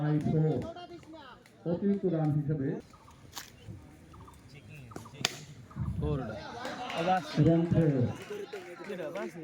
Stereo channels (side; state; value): both; identical; correlation 1.00